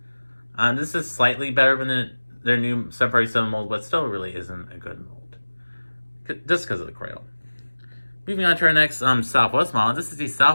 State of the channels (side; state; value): both; inverted; correlation -1.00